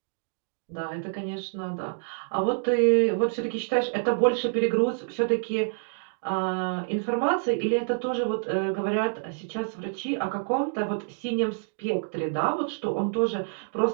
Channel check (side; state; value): left; silent; digital silence